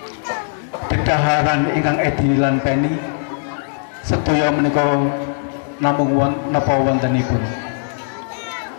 dedaharan ingkang edi lan peni sedaya menika namung napa wontenipun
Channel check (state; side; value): silent; right; 66 dB below the other